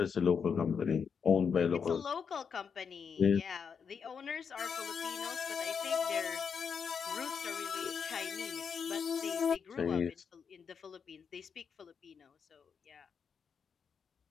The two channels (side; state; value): right; quieter; 6.4 dB